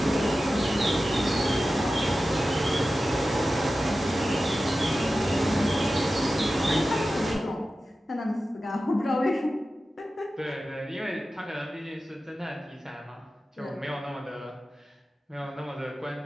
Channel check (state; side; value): normal; both; correlation 0.94